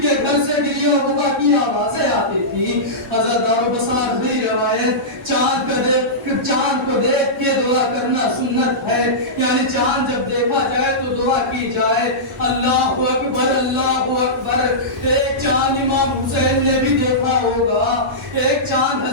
کے گھر سے گریہ وبا کی آوازیں آتی تھی۔ عزادارو بس آخری روایت چاند کو دیکھ کے دعا کرنا سنت ہے، یعنی چاند جب دیکھا جائے تو دعا کی جائے اللہ اکبر اللہ اکبر۔ ایک چاند امام حسین نے بھی دیکھا ہوگا، ایک چاند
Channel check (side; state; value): both; normal; correlation -0.15